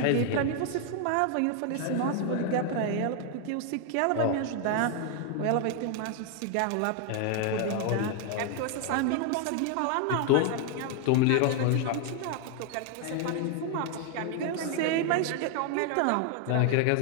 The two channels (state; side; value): different; both; correlation 0.00